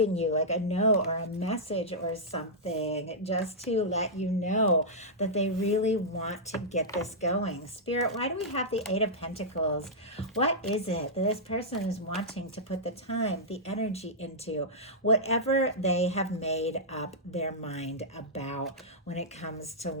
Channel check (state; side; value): normal; both; correlation -0.11